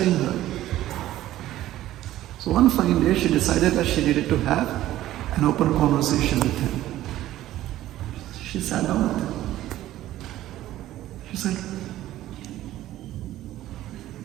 her. So one fine day, she decided that she needed to have an open conversation with him. She sat down with him. She said,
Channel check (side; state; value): left; quieter; 14.3 dB